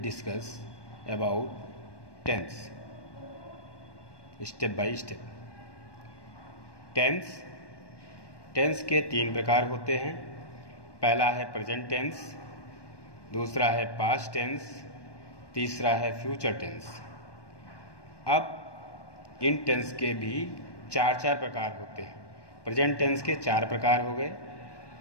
about tense, step by step. Tense के 3 प्रकार होते हैं। पहला है प्रेजेंट टेंस, दूसरा है पास्ट टेंस, तीसरा है फ्यूचर टेंस। अब इन टेंस के भी 4 प्रकार होते हैं। प्रेजेंट टेंस के 4 प्रकार हो गए।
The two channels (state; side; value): late; right; 1.2 ms